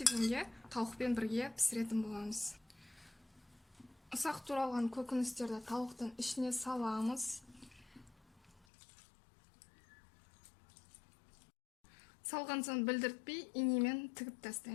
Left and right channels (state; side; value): drops out; right; at 8.7 s